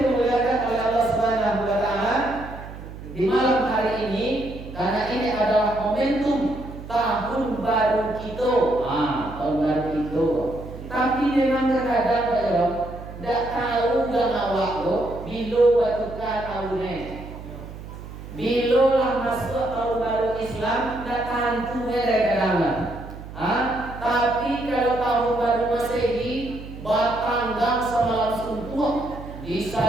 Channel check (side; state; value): right; noise; hum, 13 dB below the sound